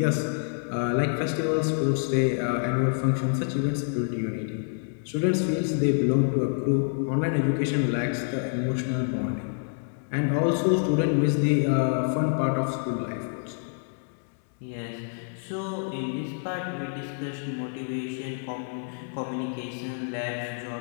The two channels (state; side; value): silent; right; digital silence